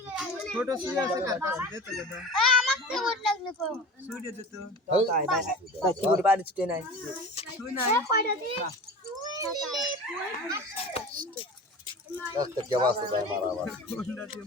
ছোট সুই আছে কার কাছে দে তো দাদা আমাকে ভোট লাগলে কো সুই দে তো তাই কি করে বাড়ি ছুটে নাই সুই নাই কয়টা দি একটা কে বাসে ভাই মারা আবার কোনটা দিয়ে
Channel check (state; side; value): normal; both; correlation 0.35